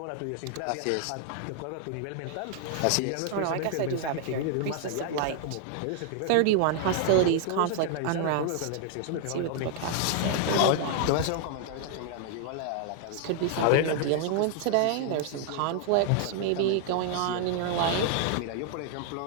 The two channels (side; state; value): both; different; correlation 0.00